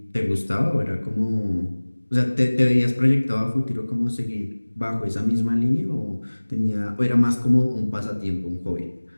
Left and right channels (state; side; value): inverted; both; correlation -1.00